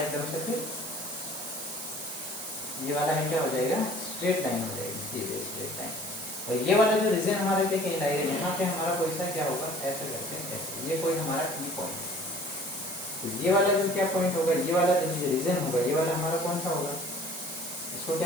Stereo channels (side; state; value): right; noise; hiss, 8 dB below the sound